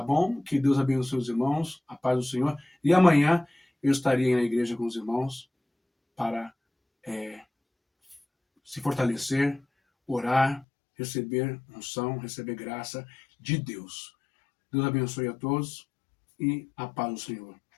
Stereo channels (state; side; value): drops out; right; at 10.7 s